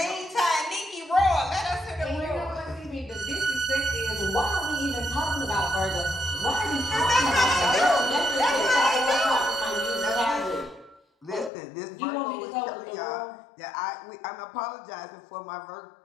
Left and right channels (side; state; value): right; drops out; at 11.5 s